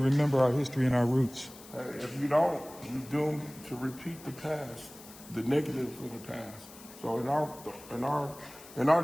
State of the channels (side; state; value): left; noise; hiss, 19 dB below the sound